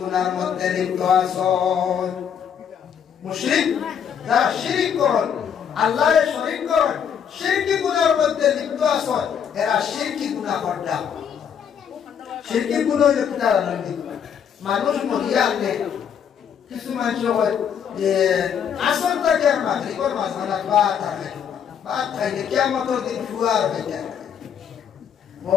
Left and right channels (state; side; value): quieter; right; 8.0 dB